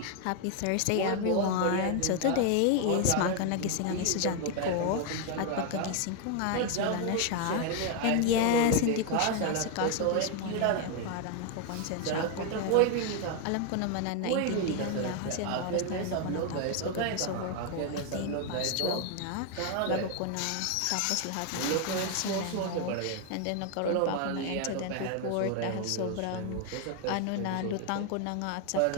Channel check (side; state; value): both; different; correlation 0.01